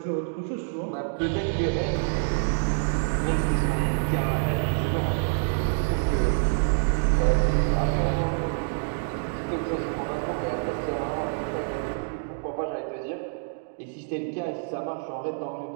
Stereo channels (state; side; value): silent; left; digital silence